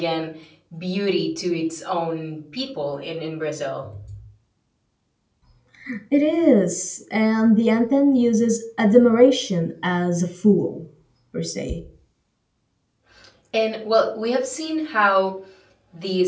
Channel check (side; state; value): both; identical; correlation 1.00